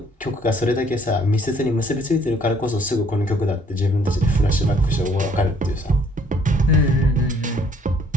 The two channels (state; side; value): normal; both; correlation 0.62